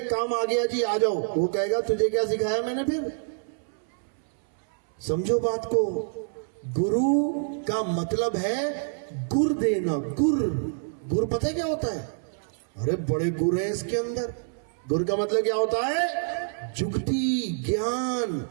काम आ गया जी आ जाओ। वो कहेगा तुझे क्या सिखाया मैंने फिर? समझो बात को। गुरु का मतलब है गुर देना। गुर पता है क्या होता है? अरे बड़े गुर है इसके अंदर। गुर का मतलब क्या होता है? जुगती, ज्ञान।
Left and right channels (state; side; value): silent; left; 60 dB below the other